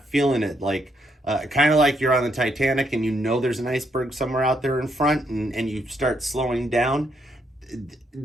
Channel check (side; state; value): both; normal; correlation 0.75